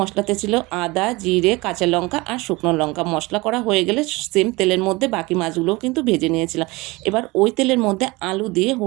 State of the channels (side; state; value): left; quieter; 23.1 dB